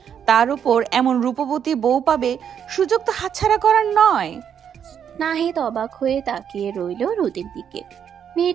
তার উপর এমন রূপবতী বউ পাবে, সুযোগ তো হাতছাড়া করার নয়। নাহিদ অবাক হয়ে তাকিয়ে রইল রোদের দিকে।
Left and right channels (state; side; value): quieter; left; 8.3 dB